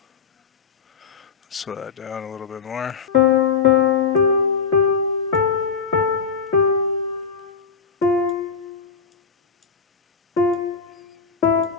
Slow that down a little bit more.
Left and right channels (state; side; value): quieter; right; 5.7 dB